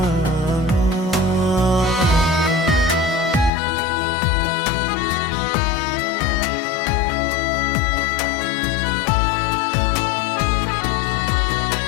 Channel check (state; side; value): drops out; right; at 3.5 s